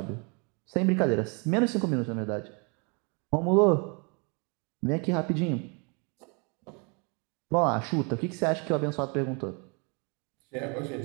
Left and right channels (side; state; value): left; quieter; 33.3 dB